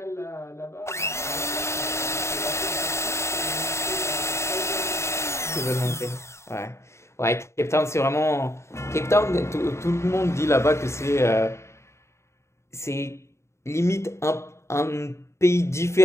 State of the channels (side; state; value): right; late; 0.13 ms